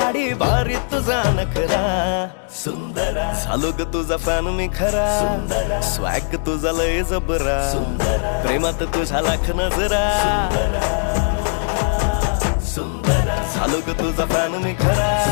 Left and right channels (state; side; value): silent; right; 66 dB below the other